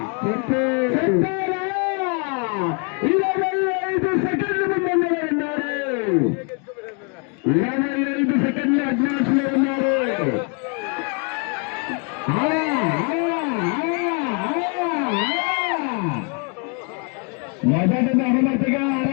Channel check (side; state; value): right; quieter; 36.5 dB